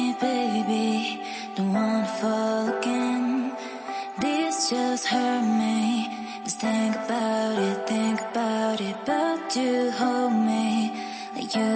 baby. Don't wanna fall again. This just hurt me. Just think about it, but you hold me like you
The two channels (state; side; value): identical; both; correlation 1.00